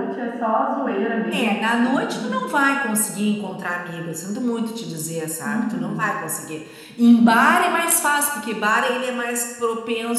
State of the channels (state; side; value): identical; both; correlation 1.00